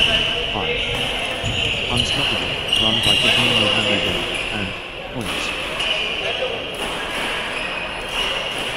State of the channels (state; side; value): identical; both; correlation 1.00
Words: 5. Unstoppable, run by Kevin Mohammedan, and points.